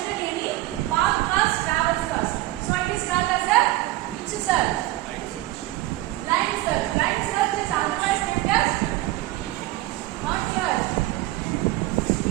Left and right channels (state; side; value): quieter; left; 17.6 dB